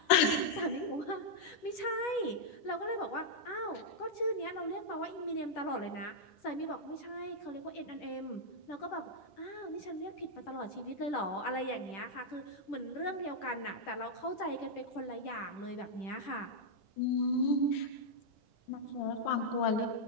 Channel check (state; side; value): late; right; 10 ms